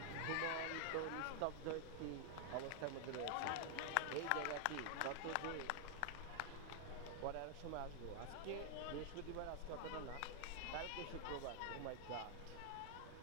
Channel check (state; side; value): different; both; correlation 0.00